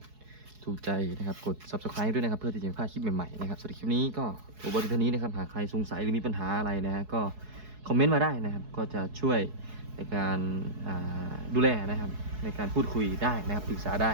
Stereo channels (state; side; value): late; left; 4.7 ms